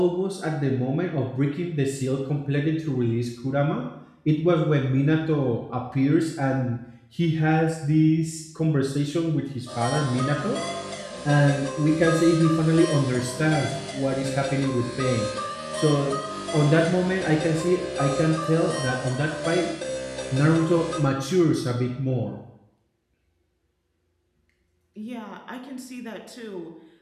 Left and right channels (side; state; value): both; identical; correlation 1.00